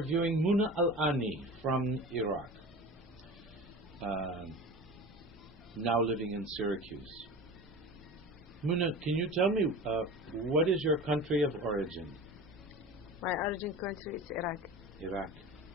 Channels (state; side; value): normal; both; correlation 0.34